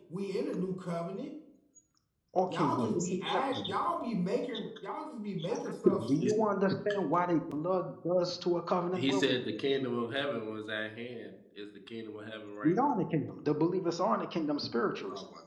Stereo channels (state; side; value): identical; both; correlation 1.00